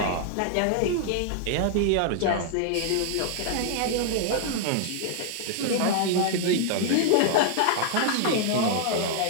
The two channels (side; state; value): both; different; correlation 0.00